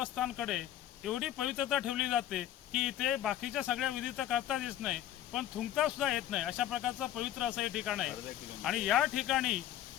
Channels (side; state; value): right; quieter; 12.2 dB